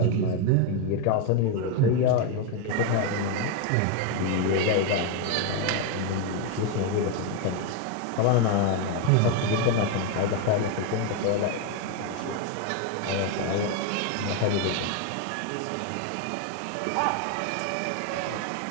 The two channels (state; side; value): different; both; correlation 0.01